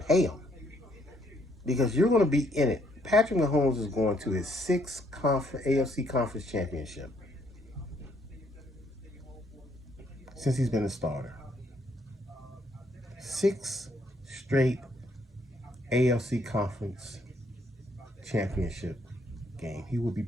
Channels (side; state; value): both; normal; correlation 0.69